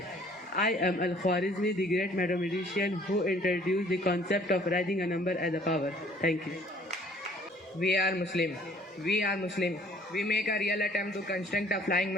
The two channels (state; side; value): normal; both; correlation 0.56